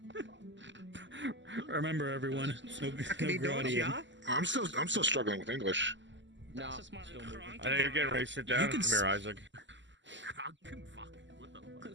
Remember, everyone, no grody. Yeah? I'm still struggling with English. No. That's just my I think you're getting ready to sit down. can Come here, Isaac.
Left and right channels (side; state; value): left; late; 0.54 ms